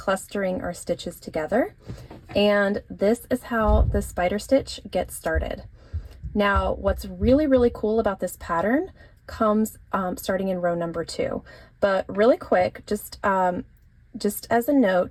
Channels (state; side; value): identical; both; correlation 1.00